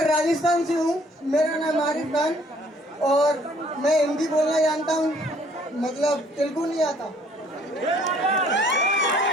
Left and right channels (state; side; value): normal; both; correlation 0.60